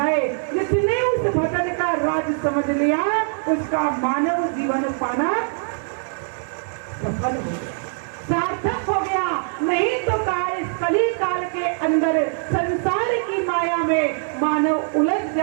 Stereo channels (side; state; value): left; silent; digital silence